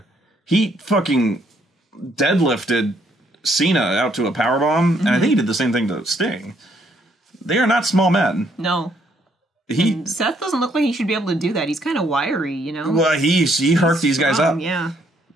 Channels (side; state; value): both; normal; correlation 0.70